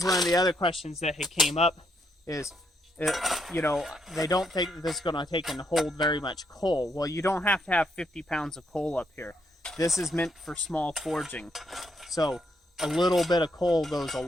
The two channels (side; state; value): both; normal; correlation 0.75